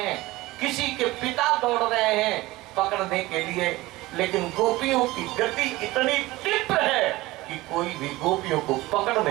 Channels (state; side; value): quieter; left; 19.2 dB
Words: किसी के पिता दौड़ रहे हैं पकड़ने के लिए, लेकिन गोपियों की गति इतनी तीव्र है कि कोई भी गोपियों को पकड़